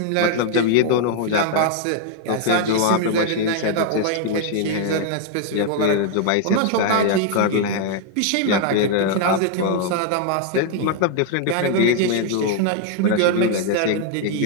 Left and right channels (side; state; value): both; different; correlation 0.00